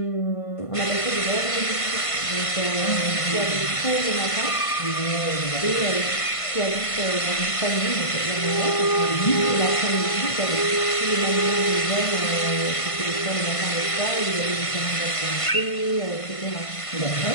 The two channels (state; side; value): late; right; 1.5 ms